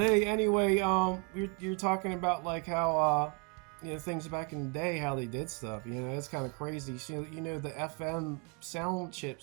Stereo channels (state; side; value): quieter; left; 34.3 dB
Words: anyway, you're talking about like how things back in the day, how they did stuff. It's kind of crazy. So, the FM sound